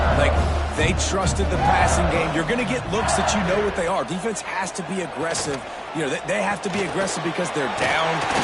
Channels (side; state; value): both; identical; correlation 1.00